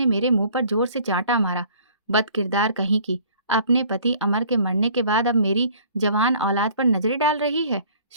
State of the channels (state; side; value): inverted; both; correlation -0.53